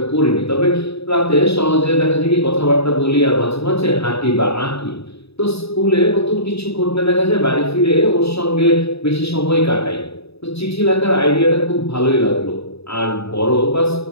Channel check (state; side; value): late; right; 0.78 ms